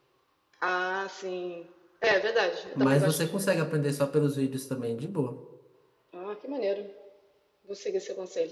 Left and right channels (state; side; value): identical; both; correlation 1.00